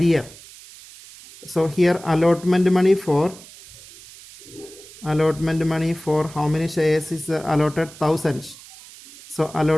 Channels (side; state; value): right; noise; hiss, 19 dB below the sound